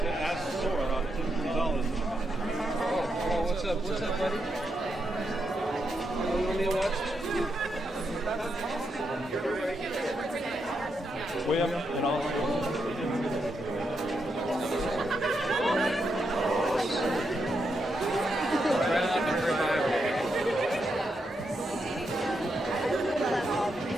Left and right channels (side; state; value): both; normal; correlation 0.83